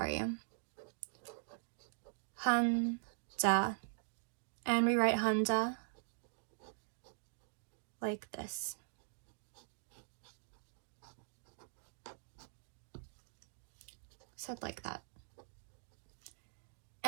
you. Hanja. And we write Hanja like this. Said like that.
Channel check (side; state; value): left; silent; digital silence